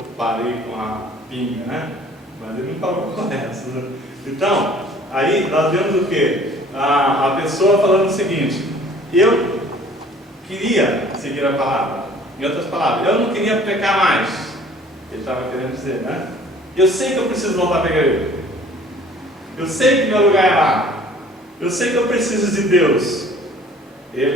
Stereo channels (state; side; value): normal; both; correlation 0.52